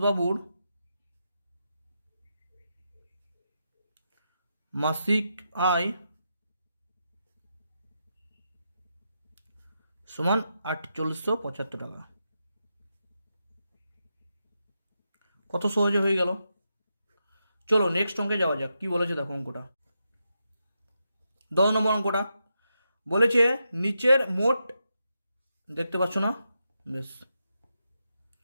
মাসিক আয় সমান 4875 টাকা। কত সহজে হয়ে গেল। চলো নেক্সট অঙ্কে যাওয়া যাক, কি বলেছে দেখো অঙ্কটা। 10 নম্বর অঙ্কটা বলেছে নিচের মোট, দেখতে পাচ্ছ না, বেশ,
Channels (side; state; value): both; inverted; correlation -0.85